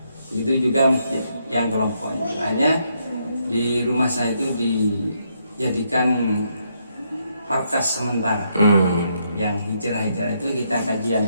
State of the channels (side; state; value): both; inverted; correlation -0.76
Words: Begitu juga masjid yang kelompoknya, hanya di rumah saya itu dijadikan markas sementara. Yang hijrah-hijrah itu kita kajian